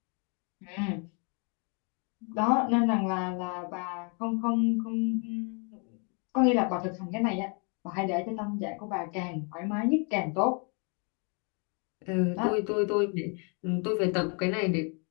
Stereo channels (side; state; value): right; quieter; 36.5 dB